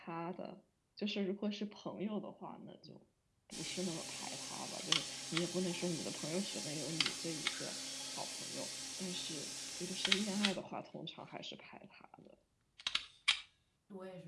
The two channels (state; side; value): identical; both; correlation 1.00